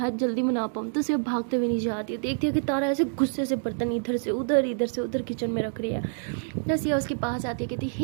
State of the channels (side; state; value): left; silent; digital silence